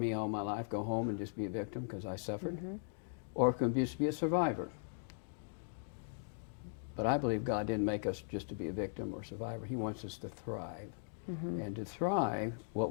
all my life, go home and just be a victim because I suffered, or it can just be a survivor. But I believe God didn't make us just to be a victim or survivor. He wants us to thrive. And to thrive, what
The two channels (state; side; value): silent; right; digital silence